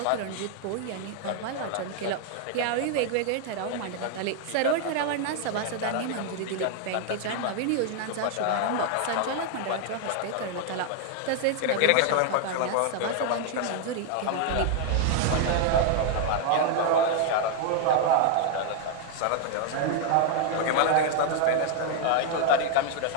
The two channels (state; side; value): different; both; correlation 0.00